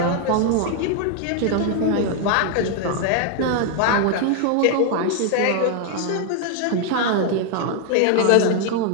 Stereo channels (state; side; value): different; both; correlation 0.00